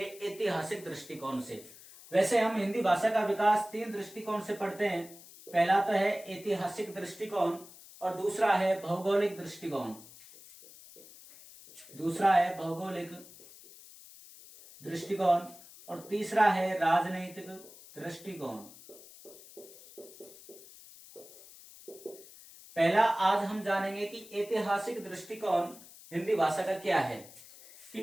ऐतिहासिक दृष्टिकोण से। वैसे हम हिंदी भाषा का विकास तीन दृष्टिकोण से पढ़ते हैं। पहला तो है ऐतिहासिक दृष्टिकोण और दूसरा है भौगोलिक दृष्टिकोण। और तीसरा है राजनीतिक दृष्टिकोण। पहला आज हम जानेंगे कि ऐतिहासिक दृष्टिकोण हिंदी भाषा का क्या है,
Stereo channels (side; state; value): left; noise; hiss, 19 dB below the sound